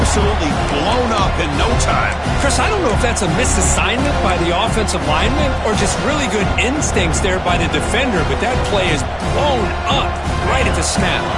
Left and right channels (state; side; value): identical; both; correlation 1.00